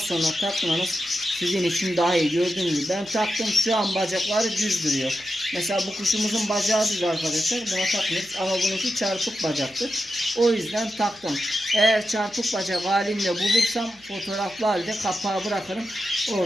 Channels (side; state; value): left; noise; hum, 29 dB below the sound